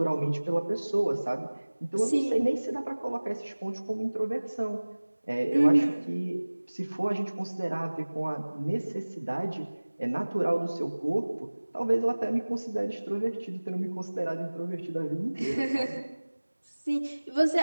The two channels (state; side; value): inverted; both; correlation -1.00